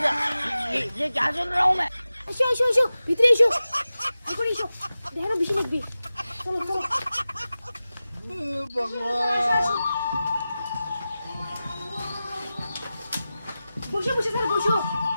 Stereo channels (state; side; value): inverted; both; correlation -0.95